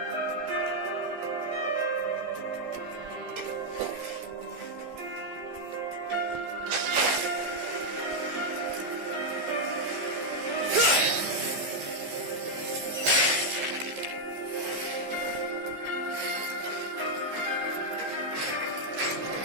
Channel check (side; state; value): left; late; 14 ms